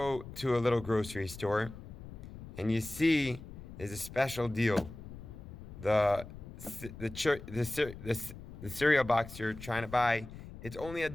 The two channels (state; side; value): noise; left; rumble, 13 dB below the sound